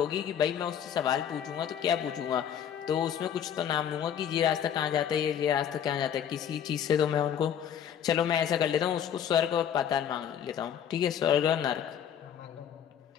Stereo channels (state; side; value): quieter; right; 9.0 dB